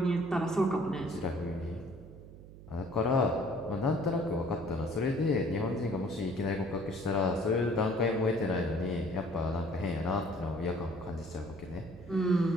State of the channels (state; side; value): noise; right; hum, 17 dB below the sound